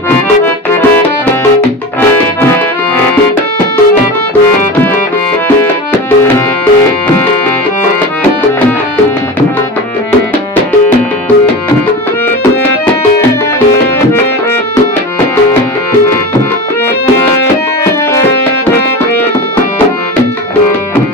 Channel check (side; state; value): both; normal; correlation 0.28